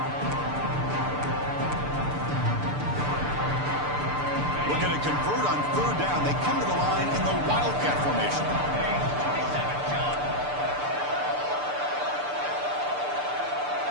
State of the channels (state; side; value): late; left; 6.8 ms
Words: Looking to convert on 3rd down. They come to the line in the Wildcat formation.